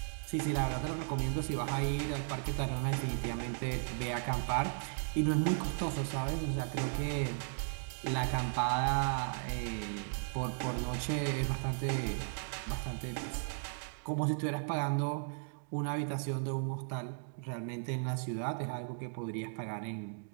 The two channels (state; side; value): silent; left; digital silence